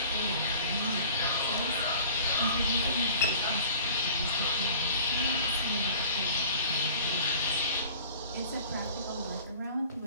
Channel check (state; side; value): inverted; both; correlation -0.45